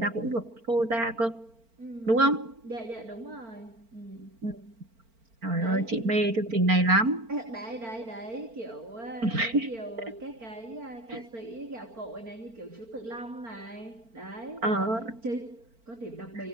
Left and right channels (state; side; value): late; left; 4.4 ms